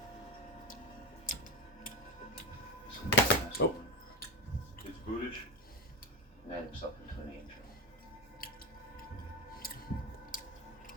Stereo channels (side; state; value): both; normal; correlation 0.20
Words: Oh. It's Budish. Made himself into an angel.